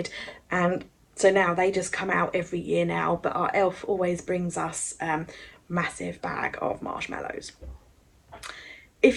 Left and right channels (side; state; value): both; identical; correlation 1.00